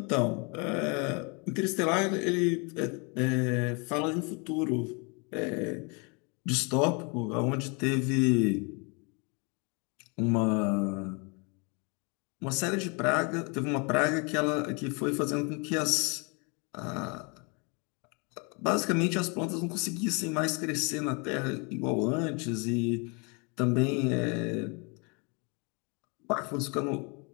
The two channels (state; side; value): quieter; right; 32.7 dB